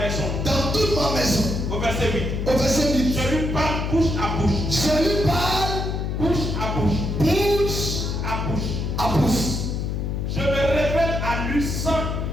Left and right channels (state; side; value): noise; left; hum, 1 dB below the sound